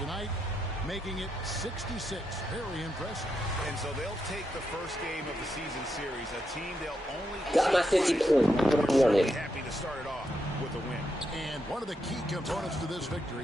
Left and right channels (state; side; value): normal; both; correlation 0.83